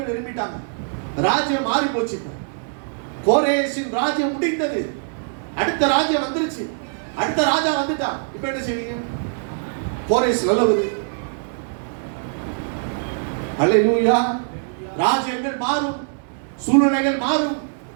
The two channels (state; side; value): silent; left; digital silence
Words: எழுப்பிட்டாங்க. ராஜ்யம் மாறி போச்சு. கோரேசின் ராஜ்யம் முடிந்தது. அடுத்த ராஜ்யம் வந்துருச்சு. அடுத்த ராஜா வந்துட்டான். இப்ப என்ன செய்வீங்க? கோரேஸ் நல்லவது. அல்லேலூயா. ராஜ்யங்கள் மாறும், சூழ்நிலைகள் மாறும்,